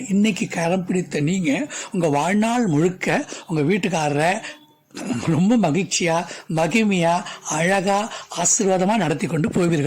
இன்னைக்கு கரம் பிடித்த நீங்கள் உங்கள் வாழ்நாள் முழுக்க உங்கள் வீட்டுக்காரரை ரொம்ப மகிழ்ச்சியா, மகிமையா, அழகா, ஆசீர்வாதமா நடத்தி கொண்டு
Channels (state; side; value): identical; both; correlation 1.00